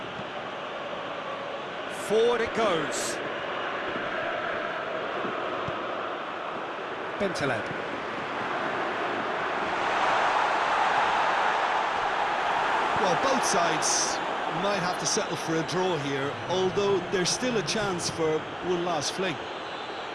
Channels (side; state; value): both; identical; correlation 1.00